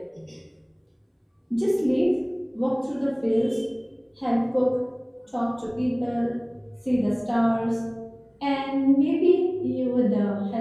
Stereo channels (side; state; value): both; identical; correlation 1.00